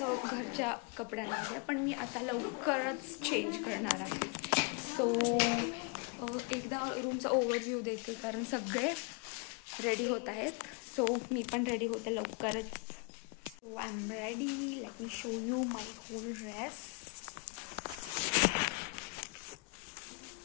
घरच्या कपड्यांमध्ये, पण मी आता लवकरच चेंज करणार आहे. सो एकदा रूमचा ओव्हरव्ह्यू देते, कारण सगळे रेडी होत आहेत. सो मी पण रेडी होते लवकरच. So I am ready. Let me show you my whole dress.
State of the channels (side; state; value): right; quieter; 30.4 dB